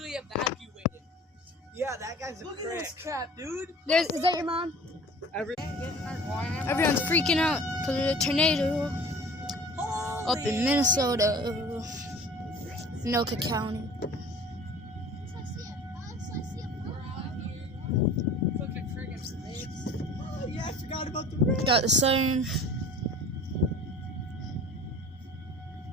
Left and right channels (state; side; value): normal; both; correlation 0.43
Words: evacuated. Yeah, that guy's a Look prick. At this crap, dude. Is that your mom? Everyone's freaking out because of the tornado up in Minnesota, Anoka County. Oh, yeah, I forgot about the rain. Got the siren.